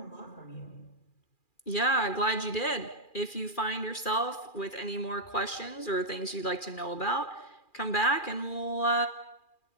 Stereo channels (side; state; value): right; late; 2.4 ms